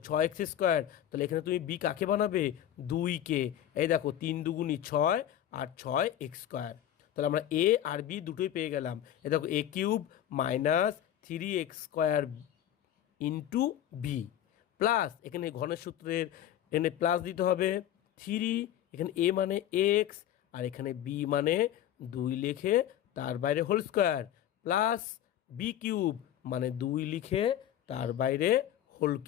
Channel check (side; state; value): right; quieter; 11.3 dB